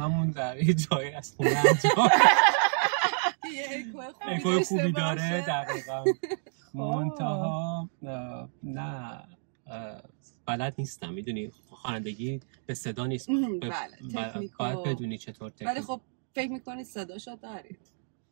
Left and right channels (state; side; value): silent; left; digital silence